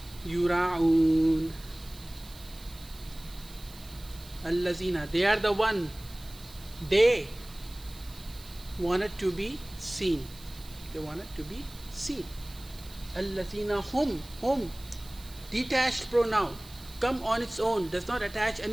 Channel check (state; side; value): noise; right; hiss, 20 dB below the sound